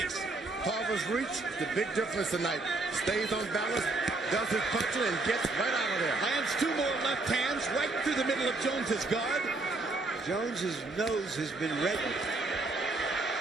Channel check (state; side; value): quieter; left; 3.3 dB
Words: Tarver's reach, the big difference tonight. Stays on balance, does his punching, and gets right out of there. Lands two more left hands right through the middle of Jones's guard. Jones's nose has been reddened.